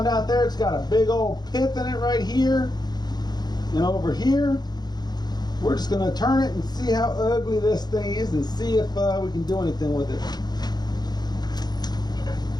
out there. It's got a big old pith in it right here and over here. We're just going to turn it and see how ugly this thing is and see if we can do anything with it.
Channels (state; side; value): late; right; 0.20 ms